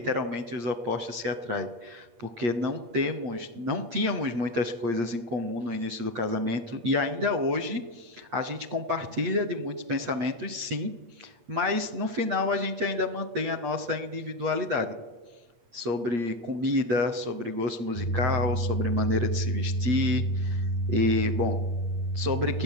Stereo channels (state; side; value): late; left; 8.5 ms